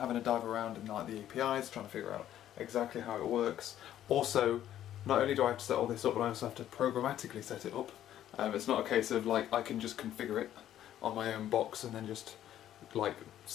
a dive around in the APIs, trying to figure out exactly how it works. Also, not only do I have to set all this up, but I also have to programmatically set it up. It's not a case of I can just configure it on my own box and then just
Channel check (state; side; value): quieter; right; 11.7 dB